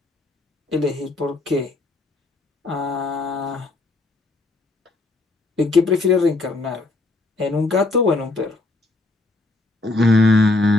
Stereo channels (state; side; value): quieter; right; 3.0 dB